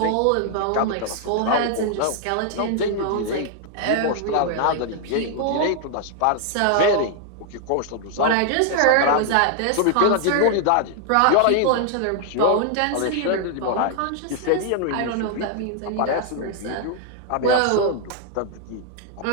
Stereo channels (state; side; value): different; both; correlation 0.00